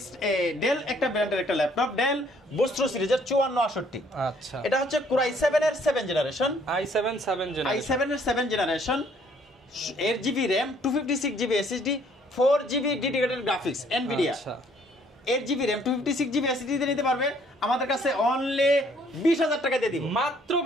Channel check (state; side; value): normal; both; correlation 0.63